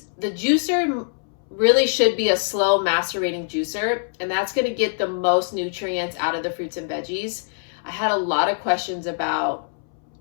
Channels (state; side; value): silent; right; 63 dB below the other